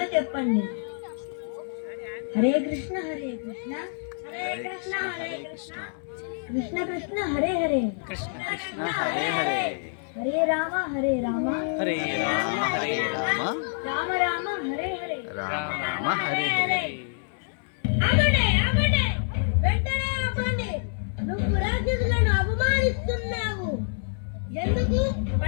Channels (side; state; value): right; silent; 60 dB below the other